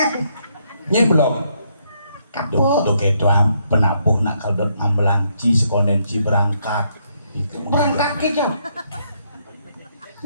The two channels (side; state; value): both; inverted; correlation -0.74